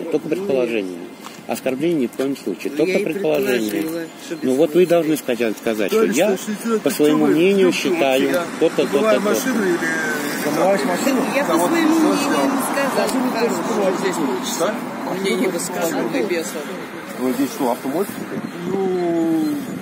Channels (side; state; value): both; identical; correlation 1.00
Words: только предположение. Оскорбление ни в коем случае, только предположение. Ну вот вы должны сказать, что я по своему мнению считаю то-то, то-то, то-то. Замываешь машину? Я по своему мнению не сказал. Вот здесь получится. Мне не высказывал и бесов. Вы здесь что, автомойка? Ну,